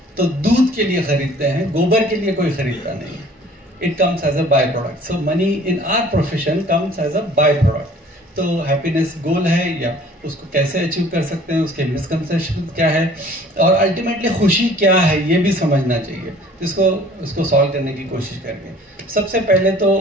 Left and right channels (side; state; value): both; normal; correlation 0.52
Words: तो दूध के लिए खरीदते हैं, गोबर के लिए कोई खरीदता नहीं है। It comes as a by product. So money in our profession comes as a by product. तो हैप्पीनेस गोल है या उसको कैसे अचीव कर सकते हैं, उसके मिसकंसेप्शन क्या है और अल्टीमेटली खुशी क्या है, ये भी समझना चाहिए। जिसको उसको सॉल्व करने की कोशिश करेंगे। सबसे पहले तो